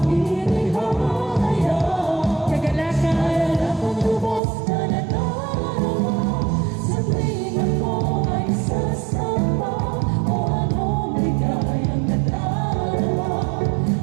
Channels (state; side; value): drops out; left; at 4.4 s